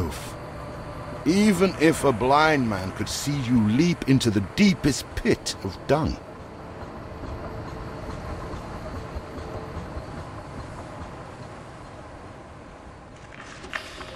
Even if a blind man could see you leap into the deepest pit of dung.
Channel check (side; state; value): both; identical; correlation 1.00